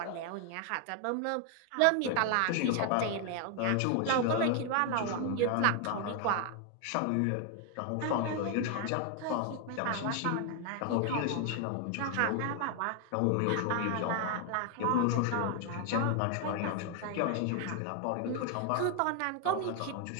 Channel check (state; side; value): different; both; correlation 0.00